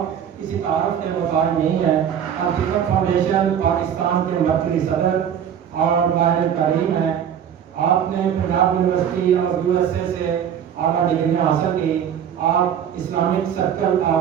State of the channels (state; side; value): quieter; left; 8.9 dB